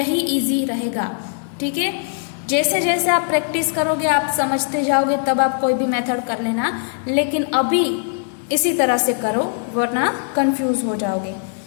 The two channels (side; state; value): right; silent; digital silence